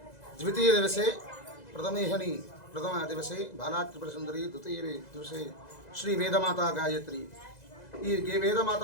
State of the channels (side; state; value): right; late; 2.0 ms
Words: ద్వితీయ దివసే ప్రథమేహని ప్రథమ దివసే బాలాత్రిపురసుందరి ద్వితీయ దివసే శ్రీ వేదమాత గాయత్రి. ఈ వేదమాత